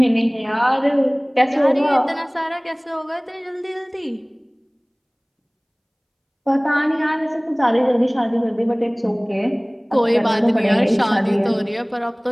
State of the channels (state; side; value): identical; both; correlation 1.00